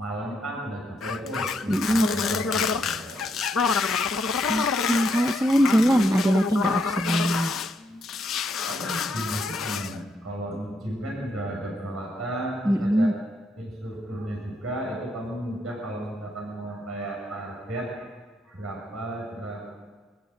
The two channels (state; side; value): normal; both; correlation 0.76